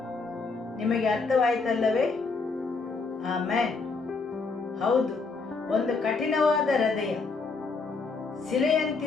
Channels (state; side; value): quieter; right; 4.2 dB